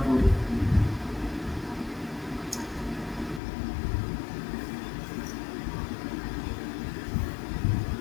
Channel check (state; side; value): drops out; right; at 3.4 s